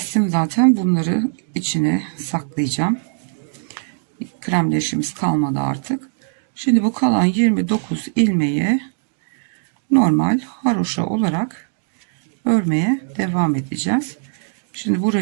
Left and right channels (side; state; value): left; silent; digital silence